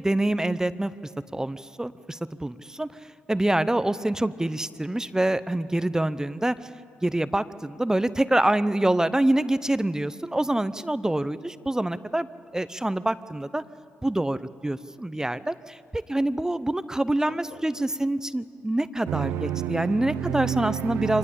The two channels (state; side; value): normal; both; correlation 0.96